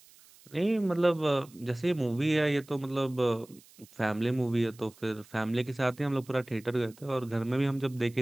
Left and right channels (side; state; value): right; noise; hiss, 25 dB below the sound